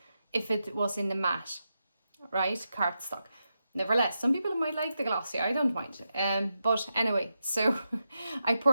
if it was in the matte, right, cardstock. Nevertheless, some people might like the glossy, I don't mind. But anyway, so I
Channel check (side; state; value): both; inverted; correlation -0.87